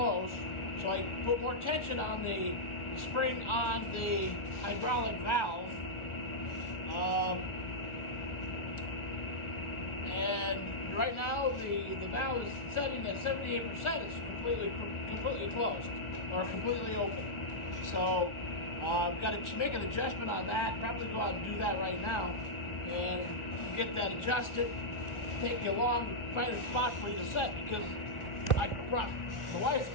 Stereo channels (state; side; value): late; right; 1.4 ms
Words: So I put more tension on the spring on the hydraulic valve, and right now the valve is setting at 78%. It's completely closed or completely open. So I've got to make an adjustment on that. Probably go out and do that right now and get that adjusted. Take you along, find a spot for you to set, because I brought the wife's